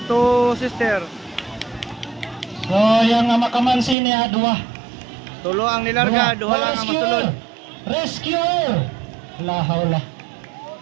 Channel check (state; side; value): drops out; left; at 4.0 s